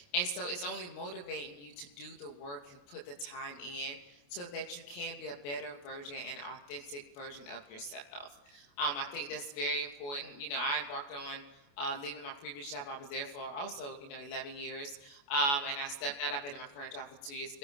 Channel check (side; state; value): right; late; 28 ms